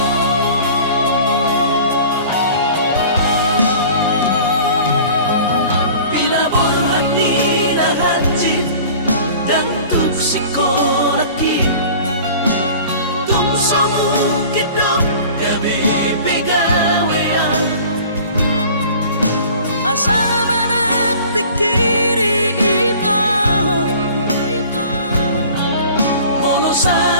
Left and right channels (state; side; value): inverted; both; correlation -0.44